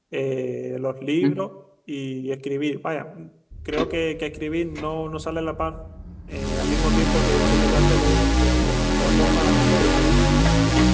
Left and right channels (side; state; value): both; identical; correlation 1.00